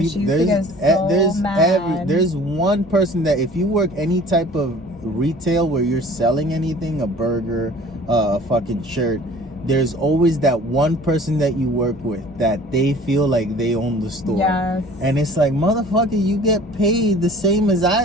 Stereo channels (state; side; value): normal; both; correlation 0.48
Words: she used to get so mad. There's one person that if you work any type of retail where you're selling anything, a burger, a fucking shirt, there's always that one person that you work with that they feel like they own the store. Yes. And it's like, motherfucker, you get paid the same as